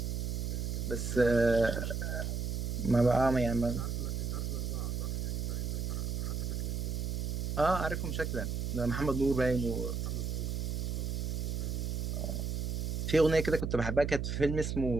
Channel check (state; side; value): noise; right; hum, 1 dB below the sound